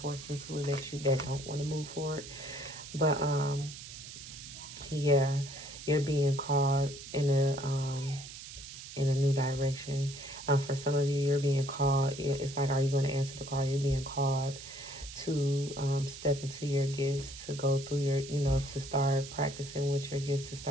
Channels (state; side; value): noise; right; hiss, 13 dB below the sound